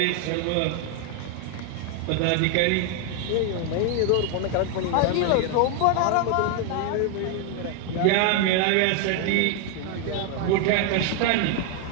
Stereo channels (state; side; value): different; both; correlation 0.01